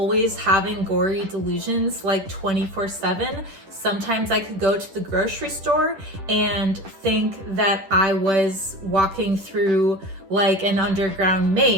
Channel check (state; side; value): late; left; 10 ms